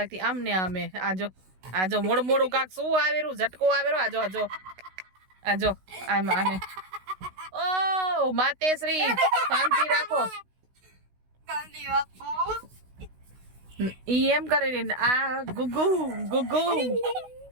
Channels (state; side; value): late; left; 16 ms